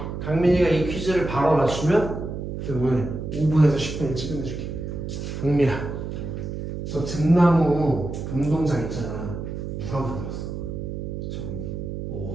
강민이가 이 퀴즈를 바로 맞추면 오늘 5분에서 10분 일찍 끝내줄게. 강민아, 저 등나무 운동장 있잖아. 누가 만들었어?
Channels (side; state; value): right; noise; hum, 6 dB below the sound